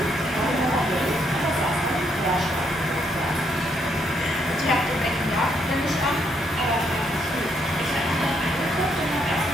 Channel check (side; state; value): both; normal; correlation 0.74